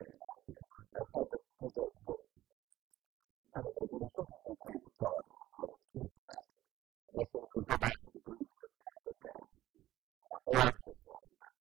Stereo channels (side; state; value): left; quieter; 14.9 dB